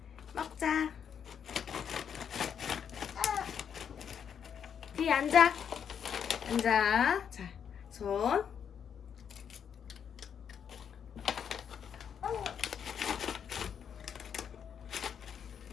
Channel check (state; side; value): quieter; right; 7.9 dB